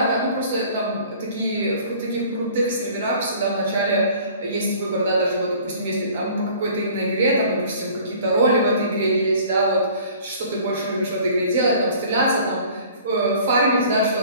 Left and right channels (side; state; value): both; inverted; correlation -0.50